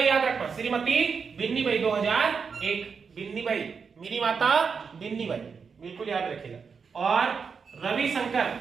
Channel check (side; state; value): left; quieter; 5.8 dB